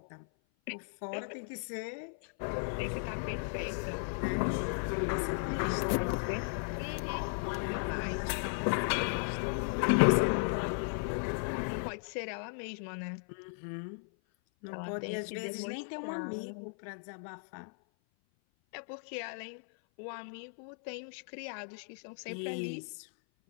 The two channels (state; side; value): silent; right; 54 dB below the other